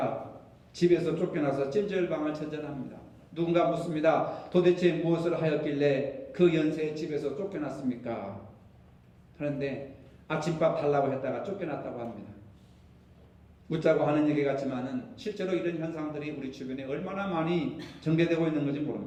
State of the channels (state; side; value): identical; both; correlation 1.00